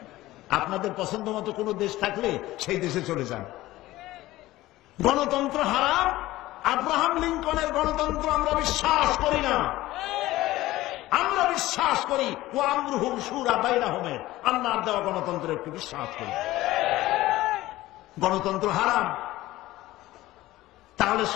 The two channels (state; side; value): quieter; right; 16.9 dB